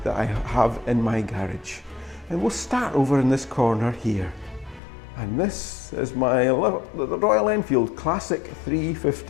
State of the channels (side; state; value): right; drops out; at 4.8 s